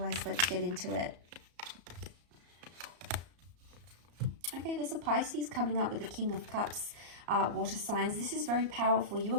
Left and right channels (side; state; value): left; late; 34 ms